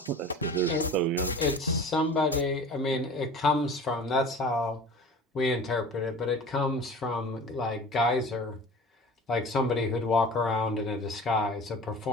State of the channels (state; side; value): normal; both; correlation 0.40